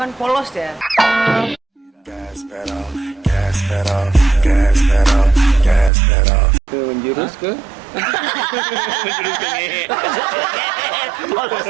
polos ya. Menjurus ke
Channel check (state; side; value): drops out; left; at 5.9 s